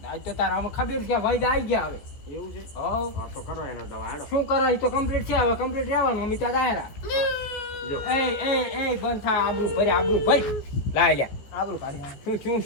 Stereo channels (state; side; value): late; right; 14 ms